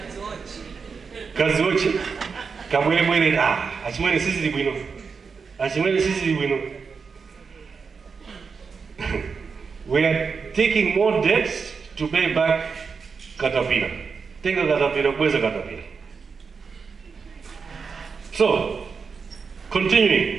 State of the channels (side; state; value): left; quieter; 5.4 dB